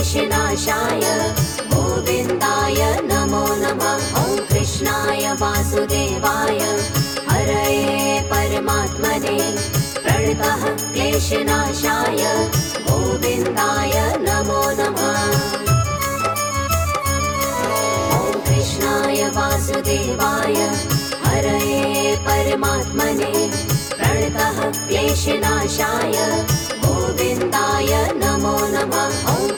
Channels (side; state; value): both; identical; correlation 1.00